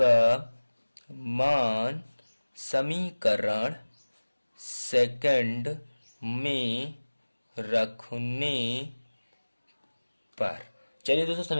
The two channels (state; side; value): inverted; both; correlation -1.00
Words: मान समीकरण सेकंड में रखने पर, चलिए दोस्तों